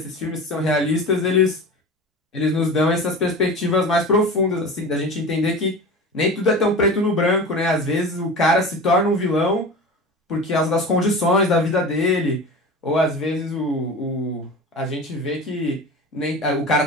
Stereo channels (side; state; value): both; normal; correlation 0.32